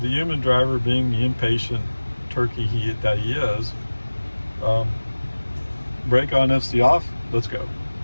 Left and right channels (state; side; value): inverted; both; correlation -1.00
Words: human driver, being the impatient turkey that he is, brake on, FSD off, let's go.